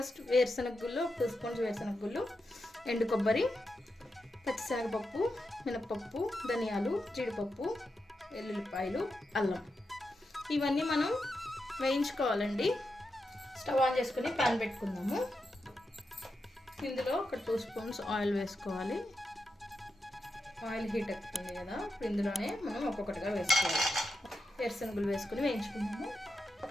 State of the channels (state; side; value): normal; both; correlation 0.87